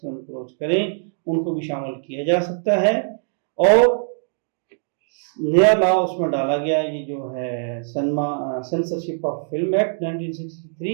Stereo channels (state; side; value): silent; left; digital silence